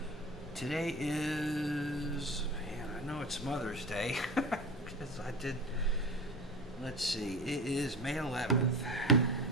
Today is, man, I know it's Mother's Day because I did, let's see, it is May 11th.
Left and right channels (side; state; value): both; normal; correlation 0.31